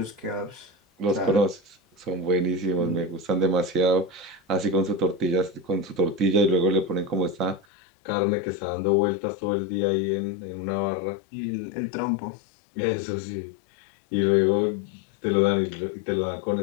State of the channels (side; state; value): right; drops out; at 7.7 s